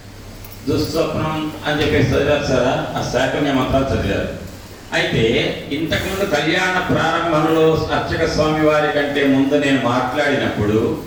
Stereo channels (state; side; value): identical; both; correlation 1.00